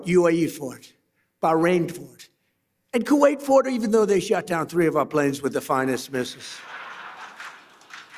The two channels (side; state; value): both; identical; correlation 1.00